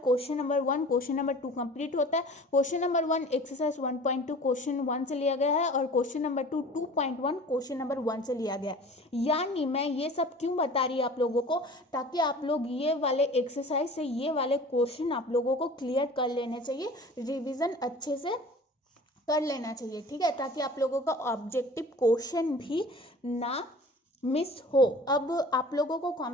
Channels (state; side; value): normal; both; correlation 0.43